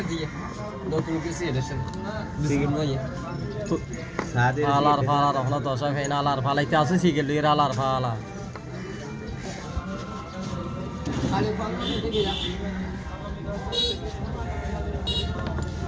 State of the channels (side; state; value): both; identical; correlation 1.00